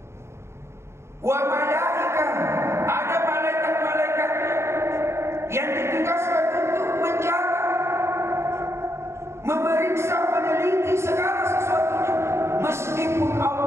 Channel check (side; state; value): left; late; 0.13 ms